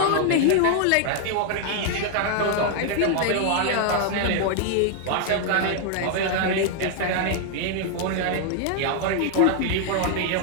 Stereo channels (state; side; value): different; both; correlation 0.00